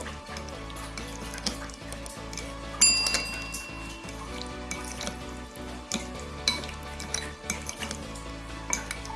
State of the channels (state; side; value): identical; both; correlation 1.00